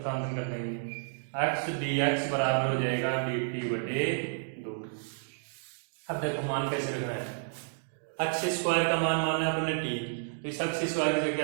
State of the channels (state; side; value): silent; left; digital silence